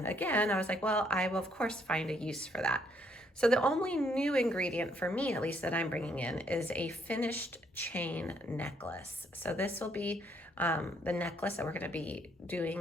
again, I was like, well, I will of course find a use for that. So the only new ingredient for me, at least that I'm bringing in, is a finished chain necklace. So this will be the necklace that we're going to be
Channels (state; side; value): normal; both; correlation 0.70